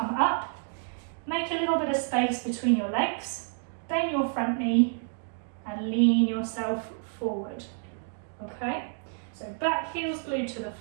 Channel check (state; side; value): silent; left; 58 dB below the other